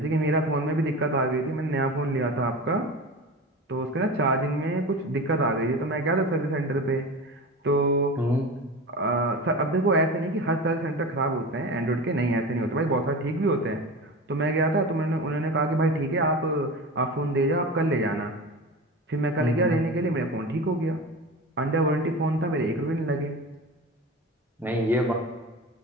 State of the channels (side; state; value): both; normal; correlation 0.29